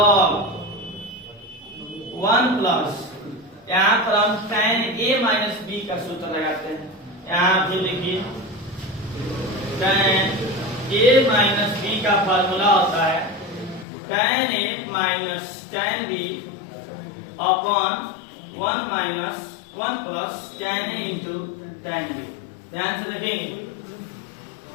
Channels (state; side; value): drops out; right; at 13.9 s